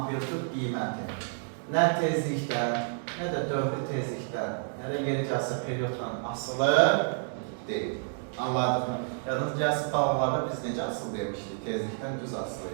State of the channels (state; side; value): silent; left; digital silence